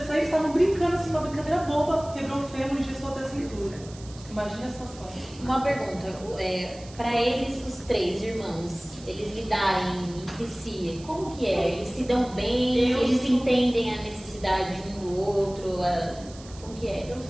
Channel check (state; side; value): noise; right; hiss, 20 dB below the sound